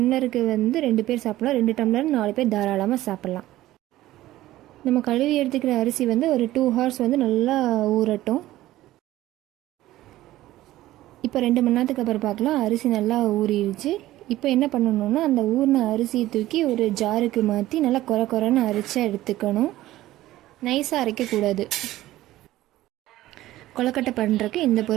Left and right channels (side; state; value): left; quieter; 15.6 dB